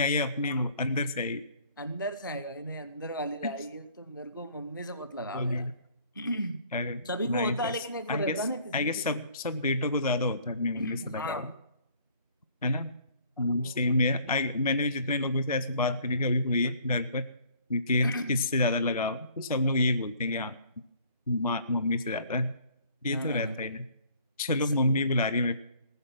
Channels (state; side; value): inverted; both; correlation -0.57